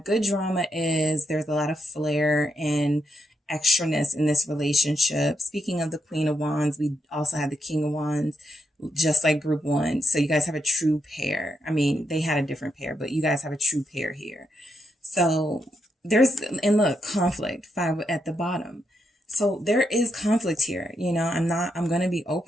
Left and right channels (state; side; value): normal; both; correlation 0.81